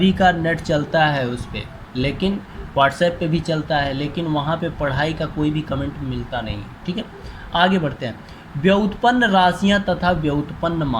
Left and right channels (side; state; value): both; identical; correlation 1.00